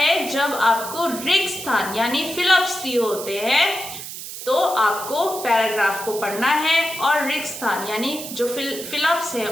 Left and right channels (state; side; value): noise; right; hiss, 10 dB below the sound